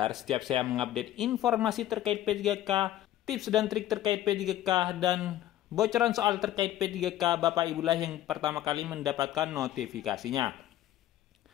setiap saya mengupdate informasi terkait P3K, tips dan trik terkait P3K, dan bocoran soal terkait P3K, Bapak Ibulah yang pertama kali mendapatkan notifikasinya.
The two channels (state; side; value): quieter; right; 13.1 dB